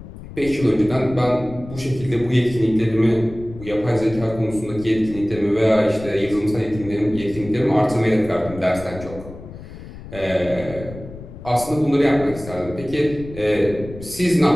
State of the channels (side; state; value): left; noise; rumble, 14 dB below the sound